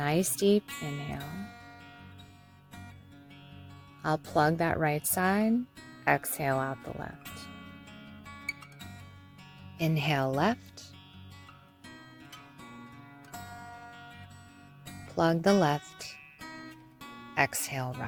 deep inhale. I'll plug that right side, exhale out the left. Inhale left. Plug the left, exhale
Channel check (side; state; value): both; identical; correlation 1.00